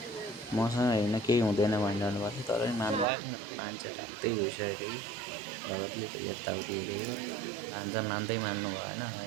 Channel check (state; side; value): drops out; left; at 3.1 s